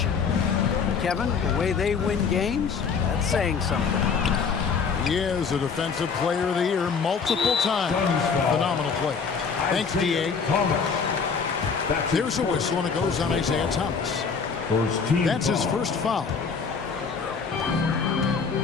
Kevin, the way they win games, that's saying something. He is a Defensive Player of the Year multiple times. Phenomenal play. Thanks, D.A. There's a whistle, and it goes on Isaiah Thomas. That's his first foul.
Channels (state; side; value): quieter; right; 5.7 dB